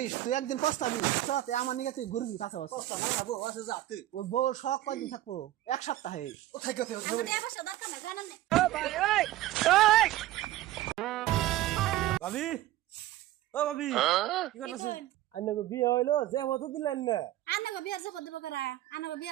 তুই একদিন পস্তাবি বুঝছস আমার নিকে তুই ঘুরবি পাশে পাশে কষ্ট না বউ আছে যা তুই ওই বউ শখ কয়দিন থাকবো 1 সপ্তাহে ও থাকো তুই আঙ্গটে বসে দরকার নাই জানেন না ভাবি ও ভাবি কি করতেছ আন্নাকে বিয়ে হইলো যে হতো দিলেন না আনাগো বিয়ার জবত দেব করা আনাগো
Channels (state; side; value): quieter; left; 14.9 dB